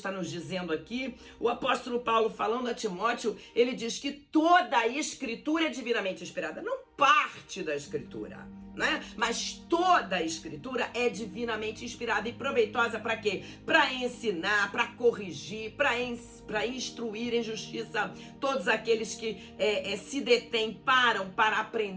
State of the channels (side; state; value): both; identical; correlation 1.00